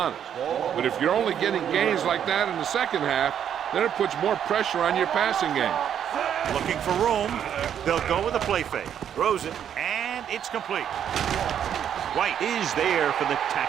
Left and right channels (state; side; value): quieter; left; 9.2 dB